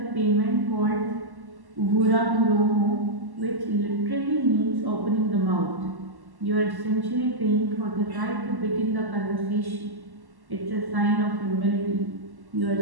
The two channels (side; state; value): left; late; 1.1 ms